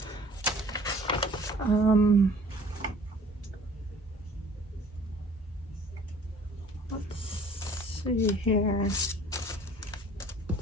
see here. Let's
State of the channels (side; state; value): both; normal; correlation 0.51